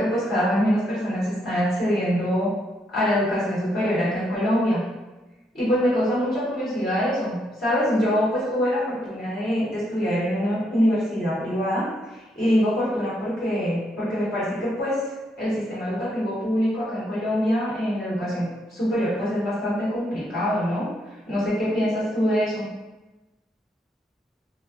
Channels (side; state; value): both; normal; correlation 0.76